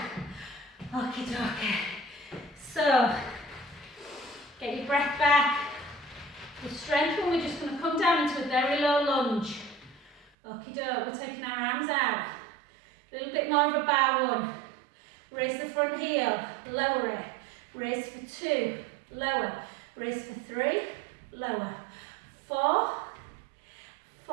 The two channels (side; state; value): left; drops out; at 10.3 s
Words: Okie dokie. So, get your breath back. The strength one, we're just going to come down into a very low lunge. Okie doke, we're taking our arms out. A little bit more of a bow one. Raise the front heel, lower it. Raise for 2, lower. Raise for 3, lower. 4,